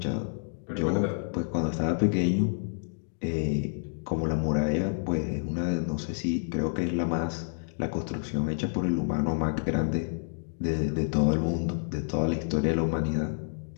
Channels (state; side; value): silent; right; digital silence